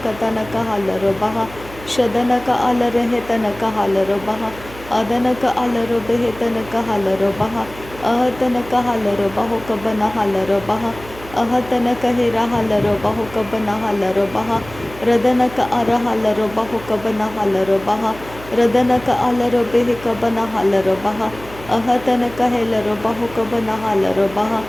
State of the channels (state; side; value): noise; right; hum, 17 dB below the sound